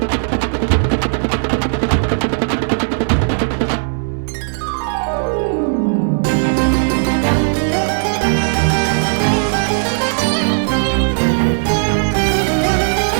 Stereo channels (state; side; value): silent; left; digital silence